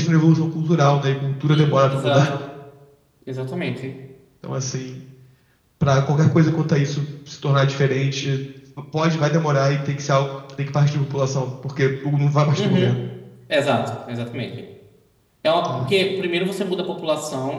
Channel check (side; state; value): both; identical; correlation 1.00